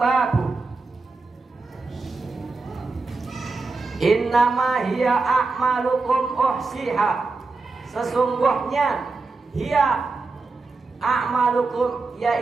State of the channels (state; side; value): quieter; left; 3.9 dB